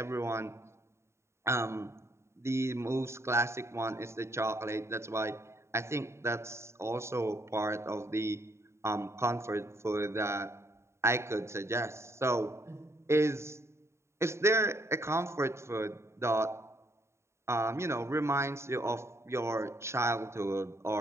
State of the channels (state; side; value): late; left; 0.13 ms